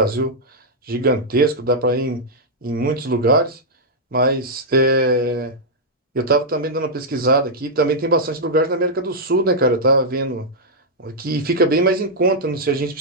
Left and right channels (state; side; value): normal; both; correlation -0.06